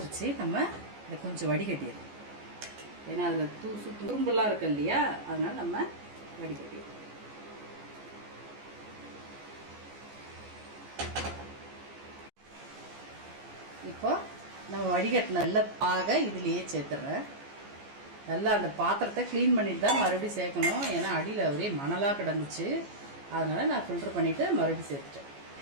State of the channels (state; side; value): late; left; 14 ms